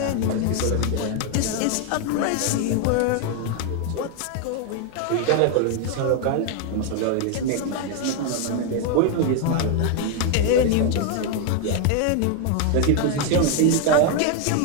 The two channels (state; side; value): different; both; correlation 0.01